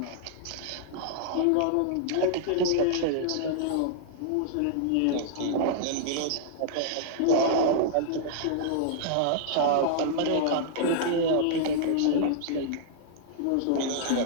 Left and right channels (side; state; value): both; different; correlation -0.01